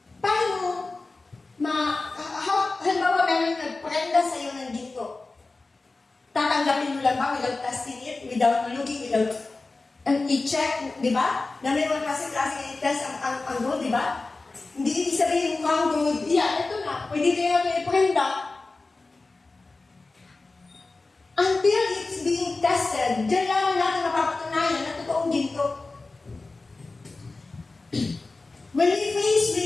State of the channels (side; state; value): right; quieter; 3.5 dB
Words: Paano halimbawa meron nagprenda sa iyo ng ginto. Tatanggapin mo lang ba without testing it, without looking, without i-check, di ba? Na may mga klase-klase i-test ang gold, di ba? Hindi ibig sabihin mukhang gold, ito na, pwede kayo may prenda. Until it's being tested, diyan lang natin mapapatunayan na totoong ginto. When we face